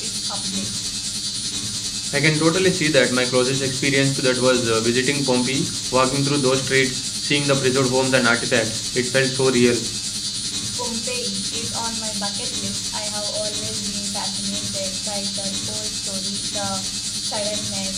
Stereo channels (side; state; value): both; identical; correlation 1.00